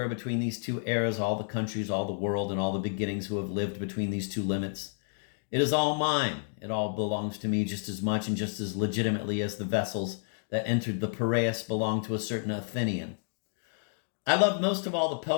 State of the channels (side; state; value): right; silent; digital silence